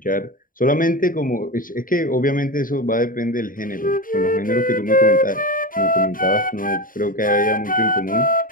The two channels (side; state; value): right; late; 0.40 ms